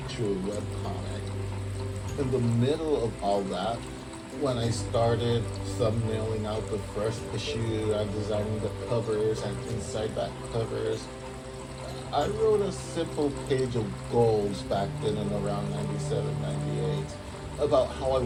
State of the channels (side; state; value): both; identical; correlation 1.00